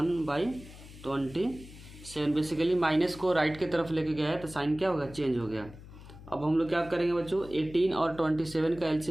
1/27 बेसिकली माइनस को राइट की तरफ लेके गया है तो साइन क्या होगा चेंज हो गया। अब हम लोग क्या करेंगे बच्चों 18 और 27 का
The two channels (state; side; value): noise; left; hum, 17 dB below the sound